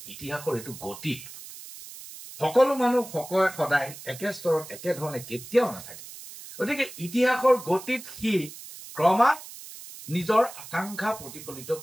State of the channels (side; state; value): right; noise; hiss, 14 dB below the sound